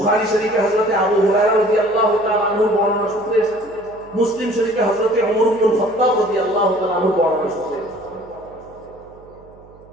শরীফে হযরতে আবু হুরায়রা রাদিয়াল্লাহু তাআলা আনহু বর্ণনা সূত্রে এসেছে, মুসলিম শরীফে হযরতে ওমর ইবনে খাত্তাব রাদিয়াল্লাহু তাআলা আনহু বর্ণনা সূত্রে এসেছে।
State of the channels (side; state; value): right; noise; hum, 25 dB below the sound